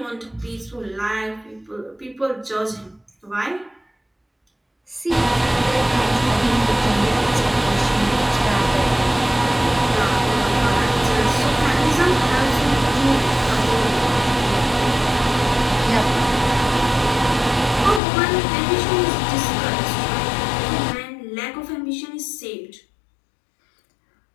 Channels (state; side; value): drops out; right; at 18.0 s